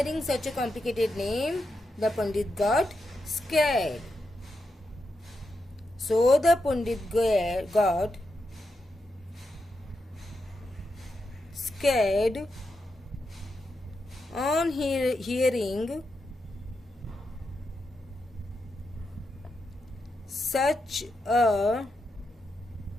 such a complicated name, the Pandit got scared. So the Pandit got scared on hearing such a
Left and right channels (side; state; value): both; normal; correlation 0.86